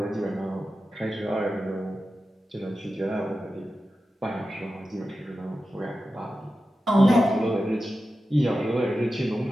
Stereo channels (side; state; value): both; normal; correlation 0.92